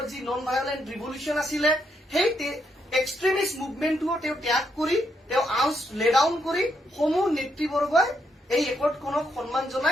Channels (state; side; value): normal; both; correlation 0.78